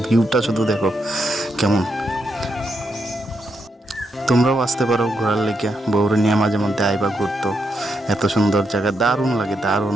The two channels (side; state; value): both; normal; correlation 0.81